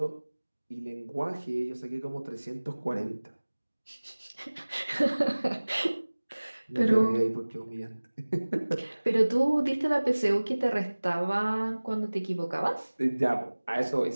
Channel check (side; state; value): both; inverted; correlation -1.00